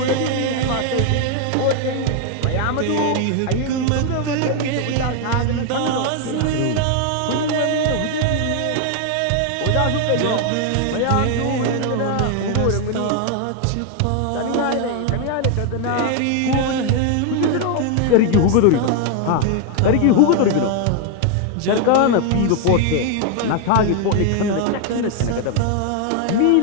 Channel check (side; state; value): both; different; correlation 0.00